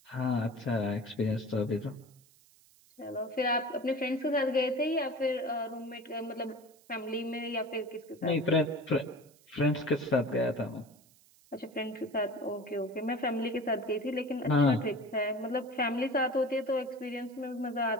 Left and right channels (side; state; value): right; noise; hiss, 28 dB below the sound